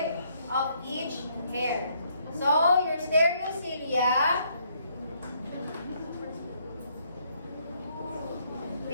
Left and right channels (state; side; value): inverted; both; correlation -0.69